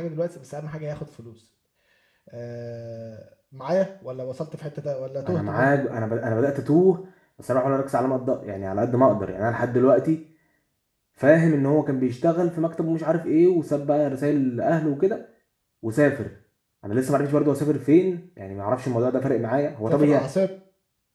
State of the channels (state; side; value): identical; both; correlation 1.00